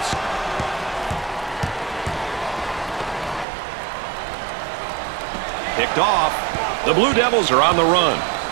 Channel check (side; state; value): left; drops out; at 3.5 s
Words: Picked off. The Blue Devils are on the run.